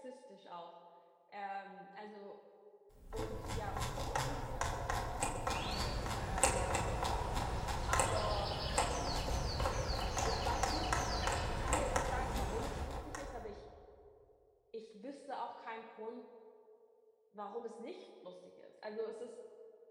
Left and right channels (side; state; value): both; identical; correlation 1.00